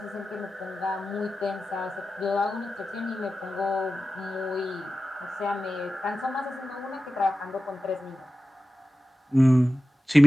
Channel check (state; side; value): normal; both; correlation 0.94